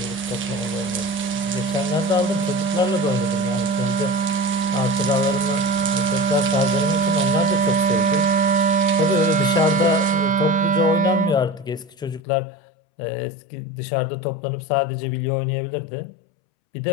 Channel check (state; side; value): drops out; right; at 12.2 s